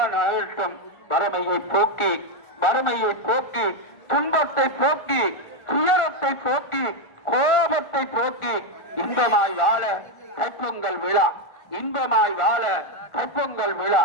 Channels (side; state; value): right; late; 1.4 ms